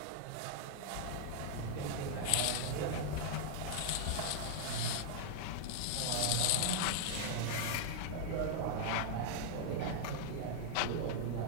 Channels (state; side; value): different; both; correlation -0.01